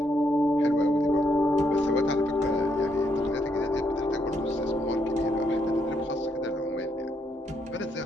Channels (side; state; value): both; normal; correlation 0.76